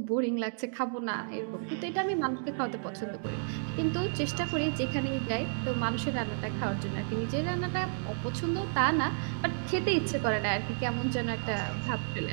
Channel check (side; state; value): left; silent; digital silence